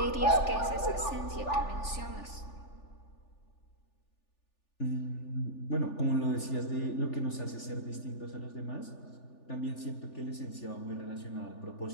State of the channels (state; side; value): late; right; 3.4 ms